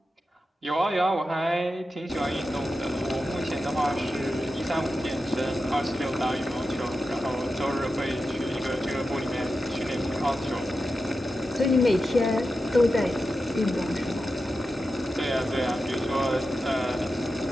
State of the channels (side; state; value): both; normal; correlation 0.91